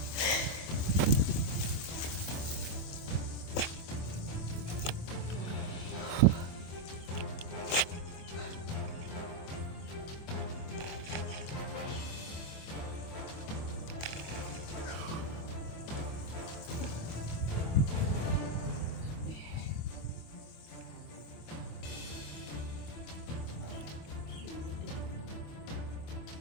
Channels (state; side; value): late; right; 25 ms